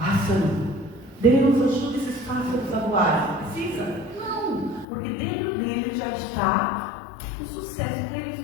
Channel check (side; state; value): right; drops out; at 4.9 s